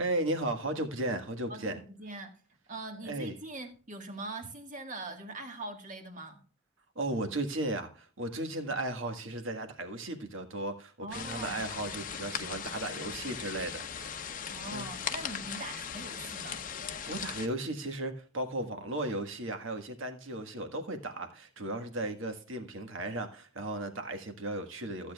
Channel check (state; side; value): normal; both; correlation -0.02